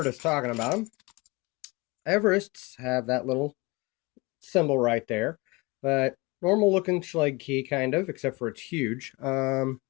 us talking about them, Everests have that little symbol right there, but normal looking Schlage key, kind of, except for it's huge. Let's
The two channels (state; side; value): quieter; right; 25.1 dB